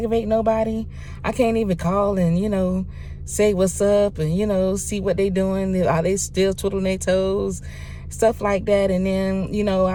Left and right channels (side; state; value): both; identical; correlation 1.00